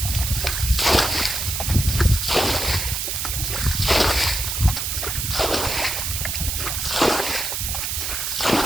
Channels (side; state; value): right; noise; hiss, 2 dB below the sound